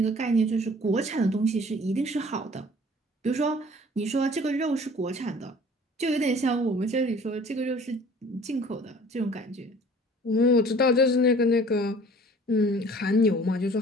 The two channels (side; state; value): both; normal; correlation 0.50